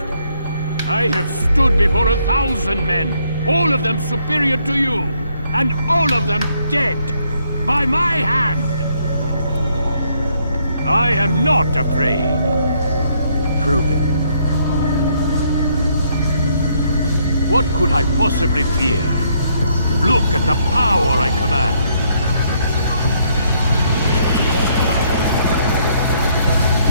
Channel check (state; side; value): inverted; both; correlation -0.70